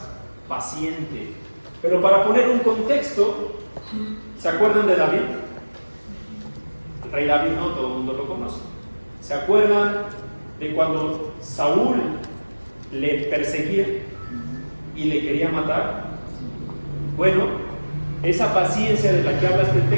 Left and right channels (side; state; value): both; inverted; correlation -1.00